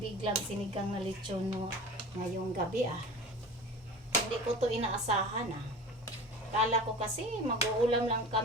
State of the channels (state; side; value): normal; both; correlation 0.36